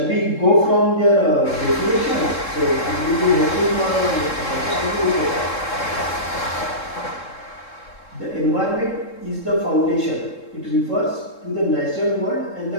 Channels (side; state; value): right; late; 3.7 ms